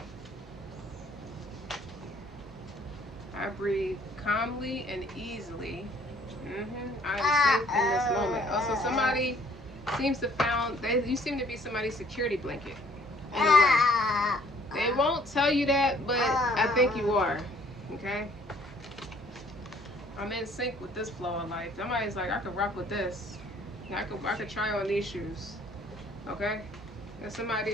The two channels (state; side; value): normal; both; correlation 0.59